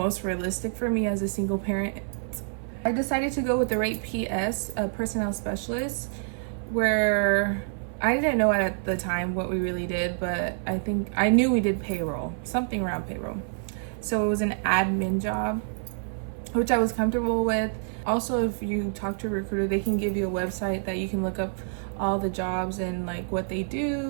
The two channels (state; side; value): silent; left; 55 dB below the other